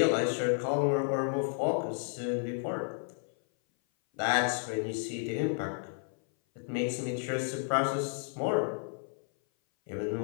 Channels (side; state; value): right; silent; 57 dB below the other